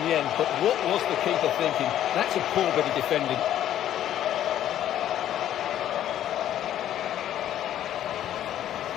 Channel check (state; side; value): quieter; right; 11.5 dB